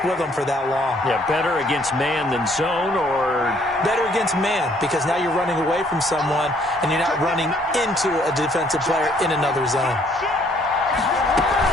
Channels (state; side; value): normal; both; correlation 0.64